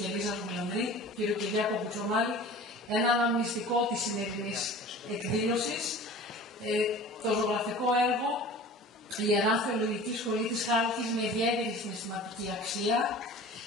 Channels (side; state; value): both; normal; correlation 0.41